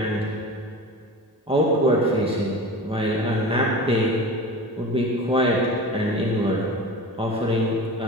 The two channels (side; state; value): both; normal; correlation 0.33